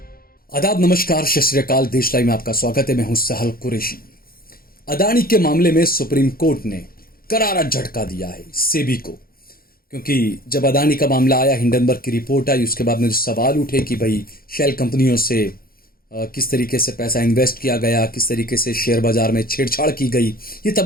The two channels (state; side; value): late; right; 0.43 ms